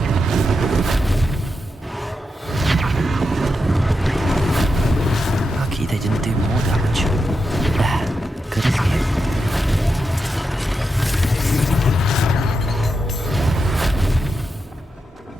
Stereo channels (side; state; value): both; normal; correlation 0.87